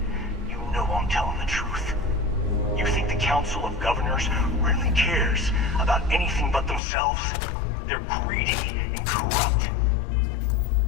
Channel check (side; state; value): right; drops out; at 6.8 s